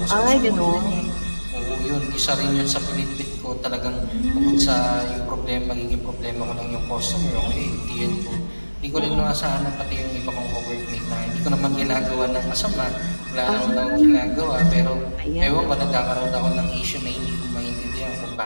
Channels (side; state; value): both; inverted; correlation -1.00